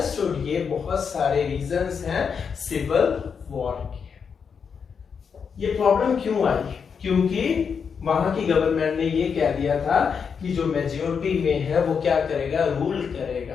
ये बहुत सारे रीजंस हैं सिविल वॉर के। ये प्रॉब्लम क्यों आई, क्योंकि वहां की गवर्नमेंट ने ये कह दिया था कि जो मेजोरिटी में है वो क्या करेगा, रूल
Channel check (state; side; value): quieter; right; 6.3 dB